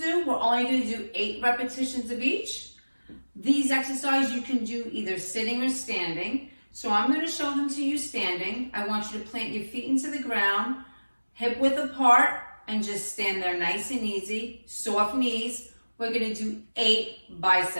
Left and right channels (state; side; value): inverted; both; correlation -1.00